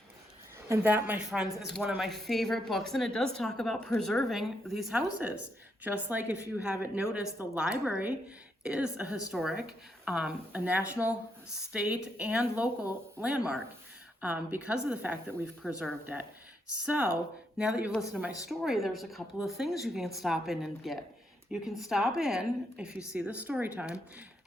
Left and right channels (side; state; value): both; normal; correlation 0.78